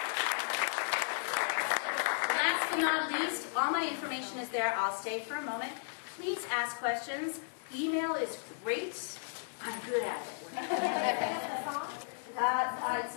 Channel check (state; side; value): silent; right; digital silence